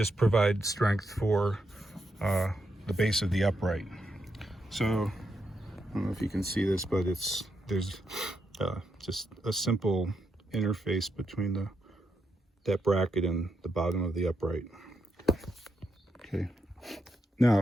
provide strength for the base of the upright. So I don't know if you can see this, but there's just a simple interface between that bracket and the bottom of the upright. Okay,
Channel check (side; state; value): both; normal; correlation 0.82